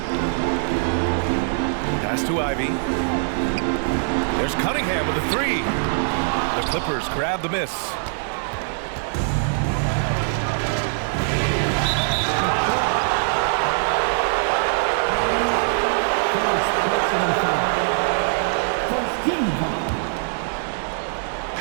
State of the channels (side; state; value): left; silent; digital silence